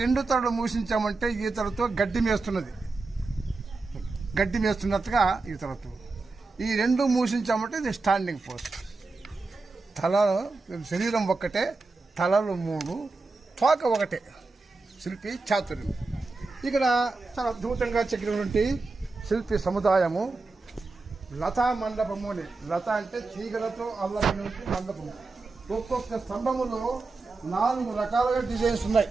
రెండు తలలు మూసించామంటే ఈ తలతో గడ్డి మేస్తున్నట్టుగా ఈ తలతో. ఈ రెండు మూసించామంటే ఇది స్టాండింగ్ పోస్ట్. శరీరం ఒక్కటే, తలలు మూడు, తోక ఒకటే. శిల్పి చాతుర్యం. ఇక్కడ చాలా అద్భుతంగా చెక్కినటువంటి శిల్పి సముదాయము. లతా మండపము అని. లత అంటే తీగలతో అల్లమైనటువంటి మండపము. ఒక్కొక్క స్తంభములో 4 రకాలుగా డిజైన్స్ ఉన్నాయి.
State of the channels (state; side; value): quieter; left; 3.7 dB